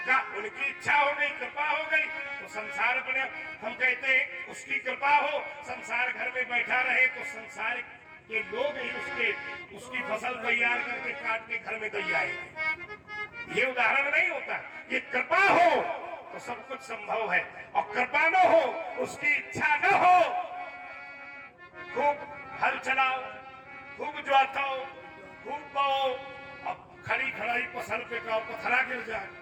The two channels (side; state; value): both; identical; correlation 1.00